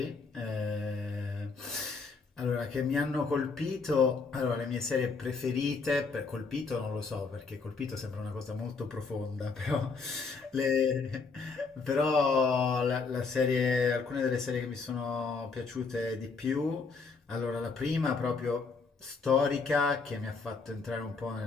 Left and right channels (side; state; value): right; quieter; 4.6 dB